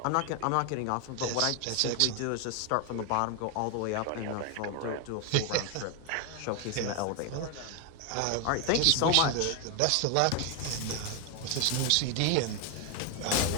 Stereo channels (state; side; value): different; both; correlation 0.01